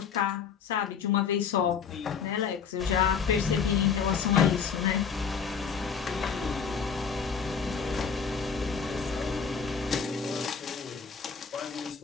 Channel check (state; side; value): quieter; right; 6.4 dB